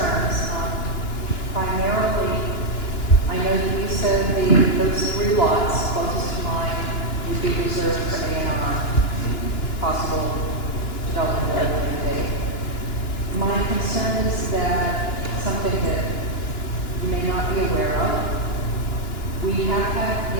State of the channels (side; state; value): right; late; 2.9 ms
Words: Primarily, I know that you said those 3 lots closest to mine would be reserved for A&R, possible development at a later date. My concern is that something that you may not be aware of, we have had